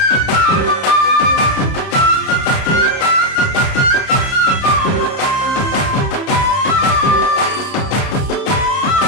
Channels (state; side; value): late; right; 30 ms